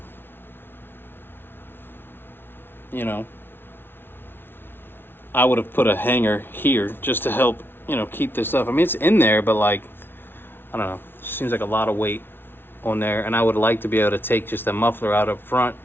You know, I would have put a hanger here just to help, you know, keep this up. I mean, it's in there, but like, I don't know, it seems like a lot of weight on there, and I would like to be able to take just the muffler out up front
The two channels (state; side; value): late; right; 0.11 ms